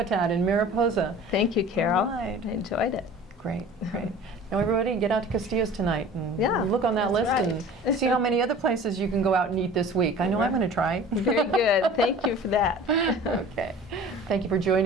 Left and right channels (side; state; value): both; normal; correlation 0.42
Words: in Mariposa. Thank you, Carol. All right. I enjoyed it. Great, great. Now everybody get out to Castillo's tonight and Yeah, look on that that's list and see how many other places you can go out and eat this week. I know I'm going to try. Very good. Thank you for that. Okay. Thank you for